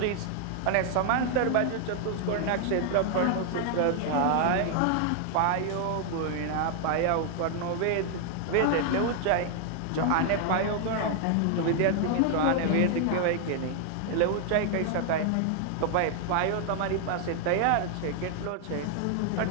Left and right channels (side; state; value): both; different; correlation 0.00